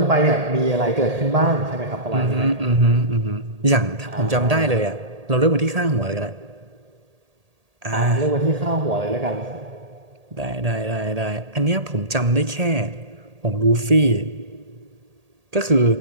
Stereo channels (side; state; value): left; late; 1.8 ms